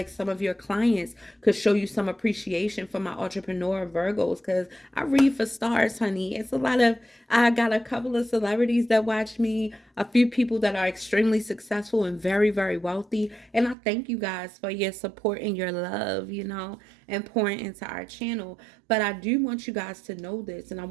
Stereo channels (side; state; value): left; drops out; at 13.8 s